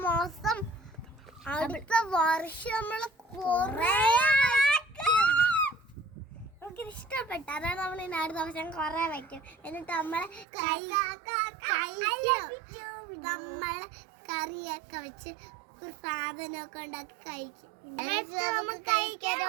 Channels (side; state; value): left; drops out; at 10.5 s